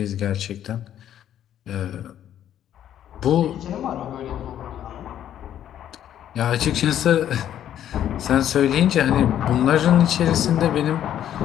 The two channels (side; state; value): right; quieter; 10.8 dB